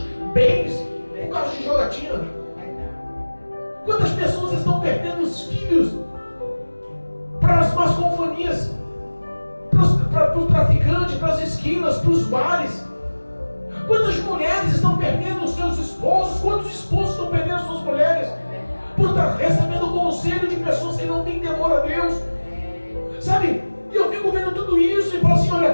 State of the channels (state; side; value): inverted; both; correlation -1.00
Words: bens por causa de jogatina? Quantas pessoas estão perdendo os filhos para as más companhias, para o traficante, para as esquinas, para os bares? Quantas mulheres estão perdendo os seus esposos? Quantos esposos estão perdendo as suas mulheres por estar recebendo conselho de pessoas que não têm temor a Deus? Sabe? E eu fico vendo tudo isso e falo assim,